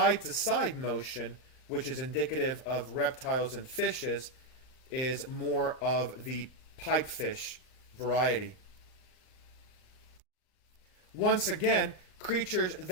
to side motion, which is indicative of reptiles and fishes, is more of the pipefish variety. Once again, creatures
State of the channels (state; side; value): late; right; 39 ms